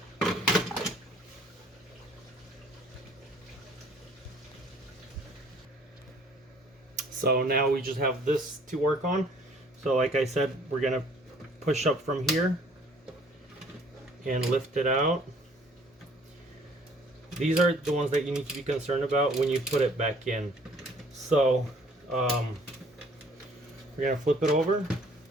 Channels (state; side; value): normal; both; correlation 0.57